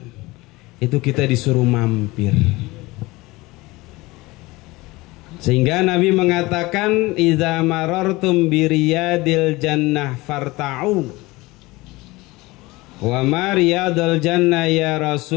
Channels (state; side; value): quieter; right; 21.5 dB